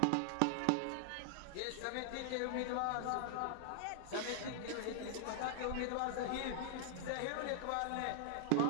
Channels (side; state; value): both; different; correlation 0.00